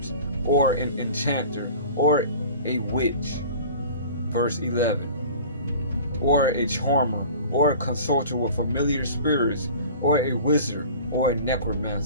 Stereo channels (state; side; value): inverted; both; correlation -0.42